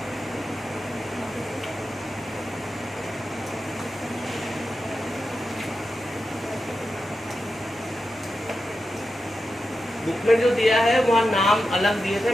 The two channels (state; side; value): normal; both; correlation 0.90